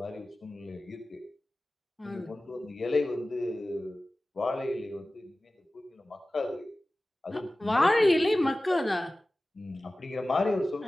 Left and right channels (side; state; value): both; normal; correlation 0.96